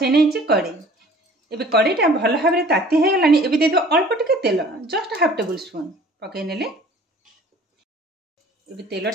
नै छी कड़ी। एबे कड़ीटा भल भाव में ताती हे गलानी। एबे दे दो अल्प टिके तेल जस्ट हाफ टेबल स्पून पके नेले। एबे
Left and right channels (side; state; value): both; normal; correlation 0.50